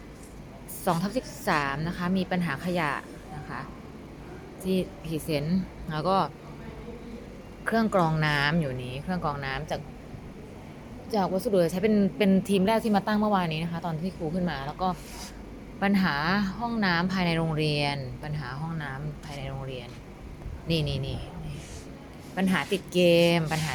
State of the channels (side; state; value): both; identical; correlation 1.00